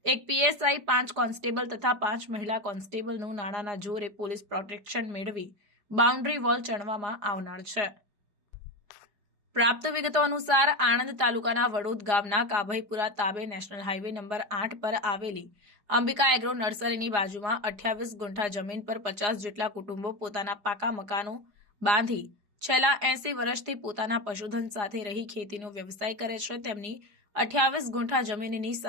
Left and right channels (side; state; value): left; late; 4.9 ms